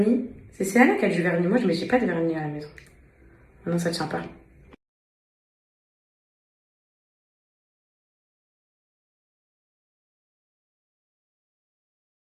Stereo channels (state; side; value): identical; both; correlation 1.00